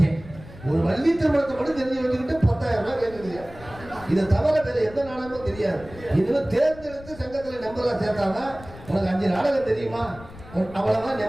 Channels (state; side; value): noise; left; rumble, 18 dB below the sound